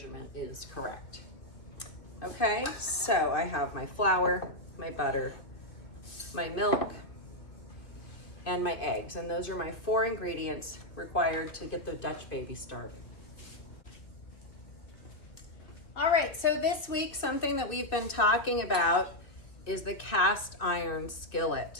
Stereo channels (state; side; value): late; right; 2.4 ms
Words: is correct. Okay, so I have my flour, my butter, my milk, and my eggs. And those are my 4 ingredients required to get the Dutch baby started. All right, so this week, something that we've been talking about is the cast iron